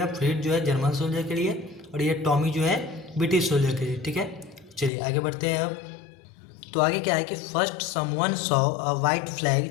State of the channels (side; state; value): right; drops out; at 4.9 s